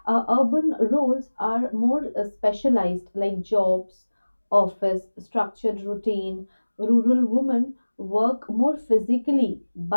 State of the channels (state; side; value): inverted; both; correlation -1.00